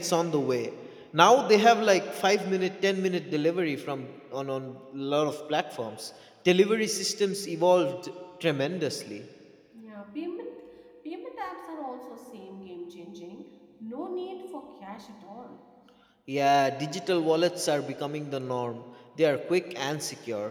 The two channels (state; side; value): identical; both; correlation 1.00